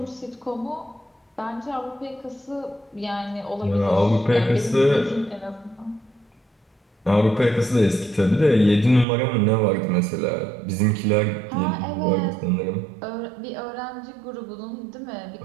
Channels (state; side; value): drops out; left; at 9.1 s